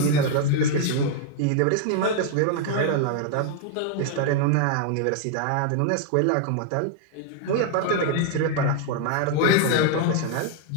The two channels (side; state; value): both; different; correlation 0.00